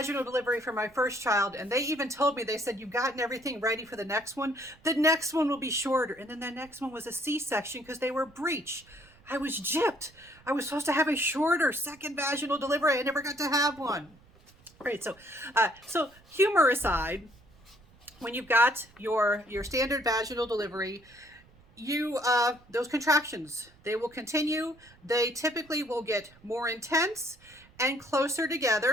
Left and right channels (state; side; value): noise; right; rumble, 27 dB below the sound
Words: delivery for my first child, and they even told me, they said, you've gotten everything ready for the next one. The next one will be shorter. And then the next one was a C-section because they were breech. I was gypped. I was supposed to have a shorter second vaginal delivery. I never got to have one. Right, so humor aside, when you've got your standard vaginal delivery, those contractions, they will continue. They typically will get more intense and closer